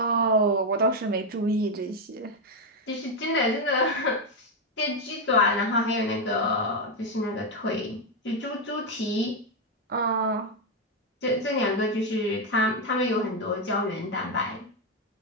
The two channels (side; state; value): both; normal; correlation 0.04